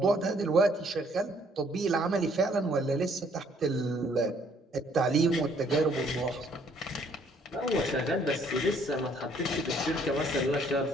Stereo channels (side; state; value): both; normal; correlation 0.64